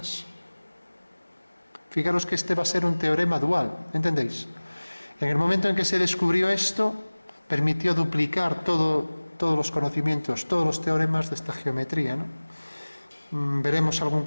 Fijaros que este va a ser un teorema dual, ¿entendéis? En el momento en que se descubrió esto, permitió duplicar todos los conocimientos, todos los teoremas de esta geometría, ¿no? Veremos algún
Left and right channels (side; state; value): both; inverted; correlation -1.00